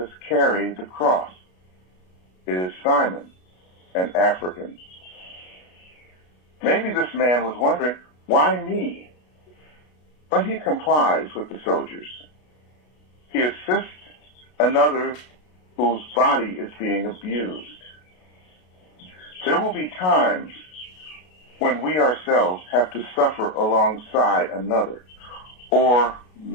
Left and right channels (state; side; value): late; right; 33 ms